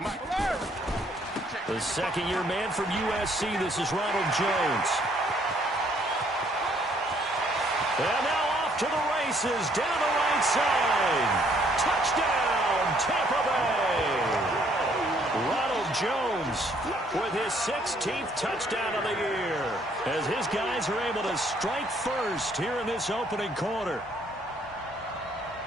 Mike. The second-year man from USC, this is Ronald Jones. And now off to the races, down the right side. Touchdown, Tampa Bay. Ronald Jones with his 16th touchdown of the year as his guys are able to strike first here in this opening quarter.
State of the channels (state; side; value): normal; both; correlation 0.65